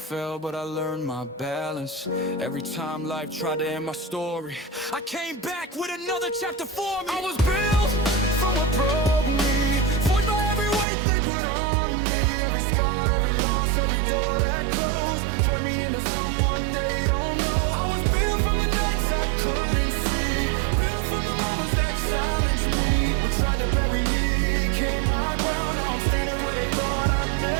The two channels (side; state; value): left; drops out; at 10.9 s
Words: but I learned my balance. Every time life tried to end my story, I came back with another chapter for me. I was built from what broke me, forged by every weight they put on me. Every scar, every loss, every door that closed turned me into someone they don't know. I was built from the nights I couldn't see, built from the moments that challenged me. What tried to bury me became my ground. Now I'm standing where they thought I'd